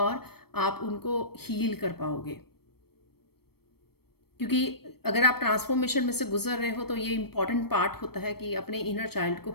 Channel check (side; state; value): right; late; 0.96 ms